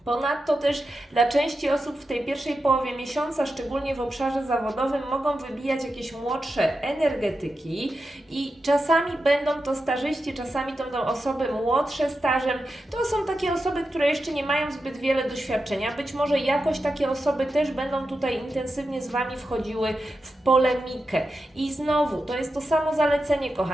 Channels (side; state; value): both; normal; correlation 0.89